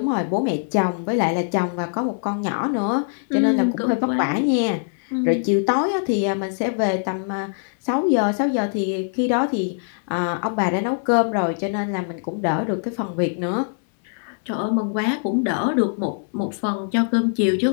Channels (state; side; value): silent; right; 64 dB below the other